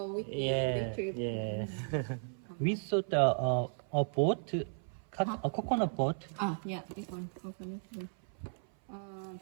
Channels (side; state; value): left; silent; 54 dB below the other